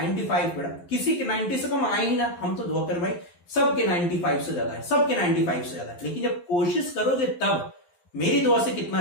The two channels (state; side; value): late; right; 11 ms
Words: बेटा, किसी के 90 से कम आए ही ना, हम तो दुआ कर भाई सबके 95 से ज्यादा है, सबके 95 से ज्यादा है, लेकिन जब कोशिश करोगे तब मेरी दुआ से कितना